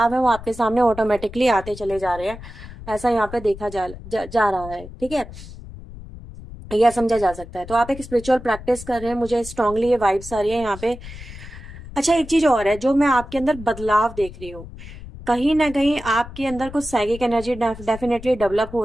है वो आपके सामने ऑटोमेटिकली आते चले जा रहे हैं, ऐसा यहाँ पे देखा जा रहा है। ठीक है, यह समझा जा सकता है। तो आप एक स्पिरिचुअल प्रैक्टिस कर रहे हैं, मुझे स्ट्रांगली ये वाइब्स आ रही है यहाँ पे। अच्छा, एक चीज और है जो मैं आपके अंदर बदलाव देख रही हूँ, कहीं ना कहीं आपके अंदर कुछ साइकिक एनर्जी डेफिनेटली डेवलप हो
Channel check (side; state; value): left; noise; rumble, 14 dB below the sound